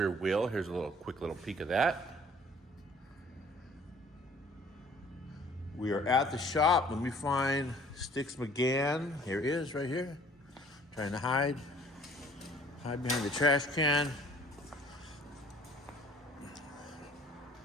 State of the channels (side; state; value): both; normal; correlation 0.54